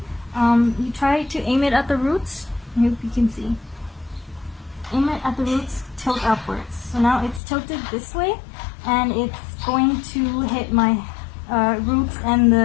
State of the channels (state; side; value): drops out; right; at 7.4 s